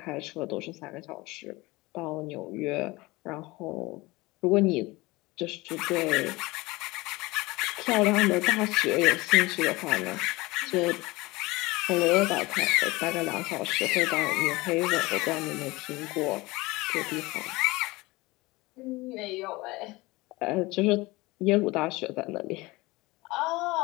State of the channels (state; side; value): quieter; right; 21.8 dB